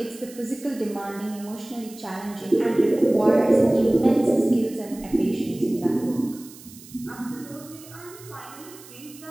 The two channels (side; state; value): right; noise; hiss, 19 dB below the sound